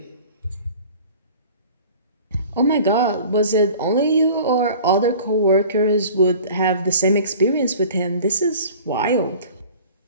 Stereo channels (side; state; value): both; inverted; correlation -0.44